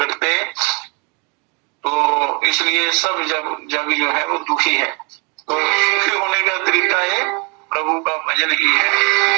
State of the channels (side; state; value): left; quieter; 32.0 dB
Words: तो इसलिए सब जग जो है वो दुखी है। तो सुखी होने का तरीका ये प्रभु का भजन ही है।